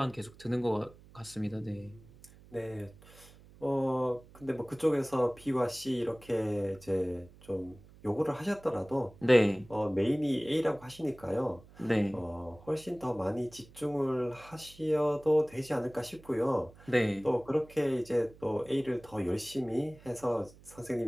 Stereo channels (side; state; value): right; noise; hum, 23 dB below the sound